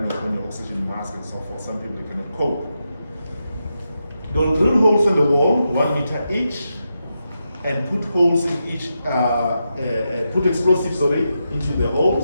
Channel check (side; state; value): both; inverted; correlation -0.86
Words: on your oxygen mask and so forth. Some people they cannot cope. They'll drill holes in the wall, 1 meter each, and put holes in each, put explosives into the